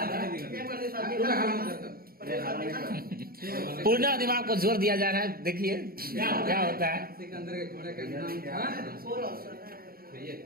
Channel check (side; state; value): left; late; 0.43 ms